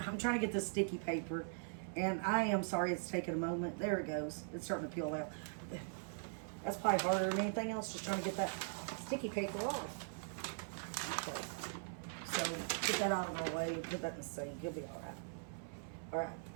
trying to get this sticky paper and I am sorry it's taking a moment. There it goes. It's starting to peel out. That's probably harder than anything else, just trying to get that sticky paper off. Okay. So get that out of my way, put that in the sink. You'll be alright. Alright.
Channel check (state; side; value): silent; left; 50 dB below the other